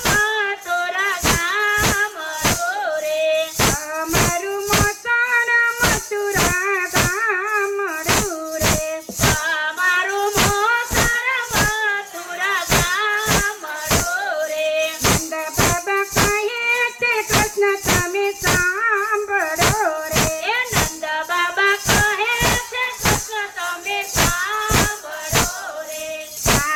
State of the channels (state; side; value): identical; both; correlation 1.00